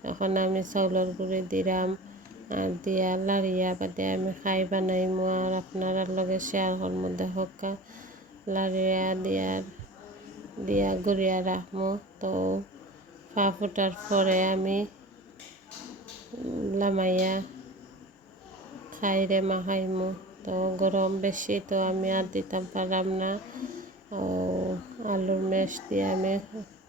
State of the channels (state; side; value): normal; both; correlation 0.36